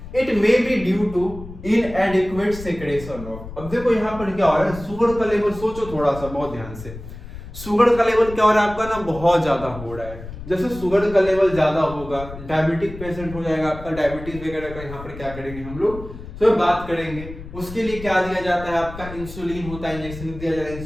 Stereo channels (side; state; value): left; noise; rumble, 13 dB below the sound